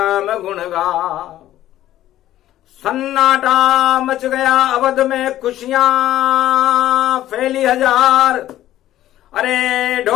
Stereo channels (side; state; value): right; quieter; 13.5 dB